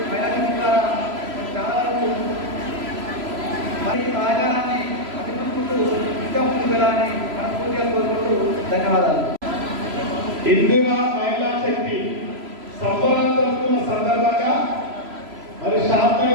మహిళా శక్తి ద్వారా చాలా వరకు మరి సహకారాన్ని అందిపుకుంటూ ఇంకా ముందుకు వెళ్ళాలని మనస్ఫూర్తిగా కోరుకుంటూ ధన్యవాదాలు. ఇందిరా మహిళా శక్తి సంబరాలు జరుపుకున్న సందర్భంగా మరి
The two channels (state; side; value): late; left; 3.0 ms